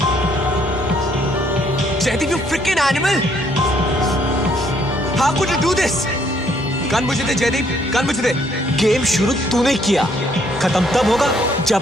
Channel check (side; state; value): both; normal; correlation 0.67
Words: you freaking animal! How could you do this? Gun मुझे दे जयदीप, गन मुझे दे। गेम शुरू तूने किया, खत्म तब होगा जब